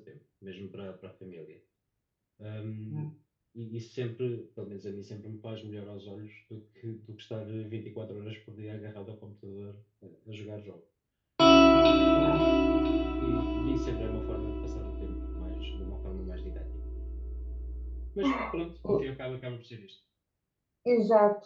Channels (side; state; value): both; identical; correlation 1.00